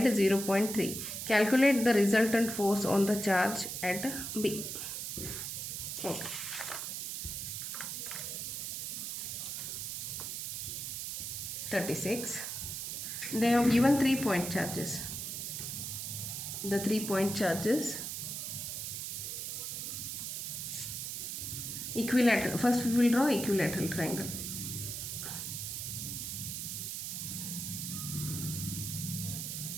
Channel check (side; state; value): right; noise; hiss, 4 dB below the sound